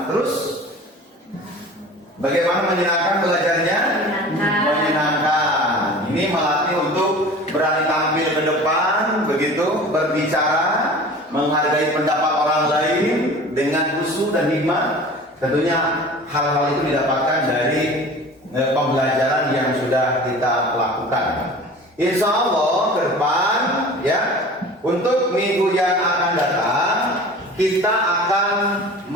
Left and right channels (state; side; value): normal; both; correlation 0.40